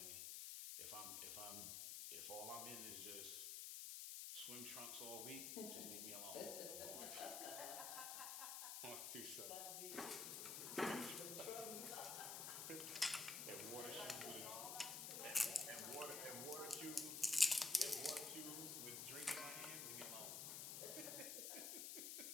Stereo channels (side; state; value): left; noise; hiss, 3 dB below the sound